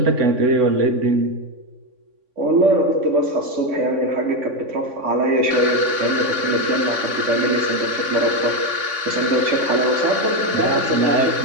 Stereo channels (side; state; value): left; late; 3.6 ms